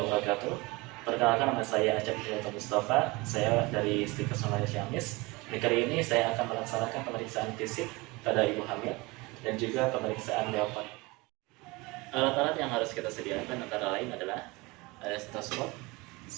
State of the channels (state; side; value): quieter; left; 23.9 dB